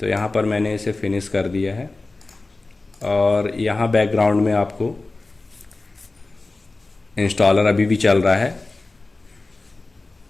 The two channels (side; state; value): right; quieter; 3.3 dB